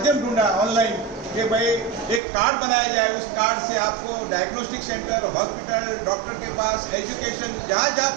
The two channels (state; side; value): drops out; left; at 2.2 s